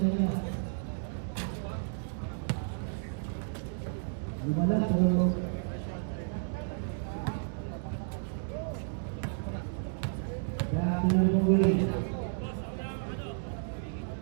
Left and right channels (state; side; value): silent; left; digital silence